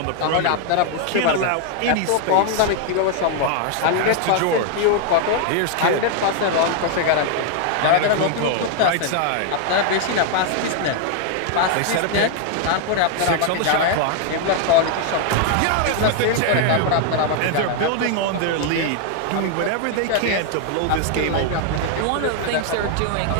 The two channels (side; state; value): both; different; correlation 0.00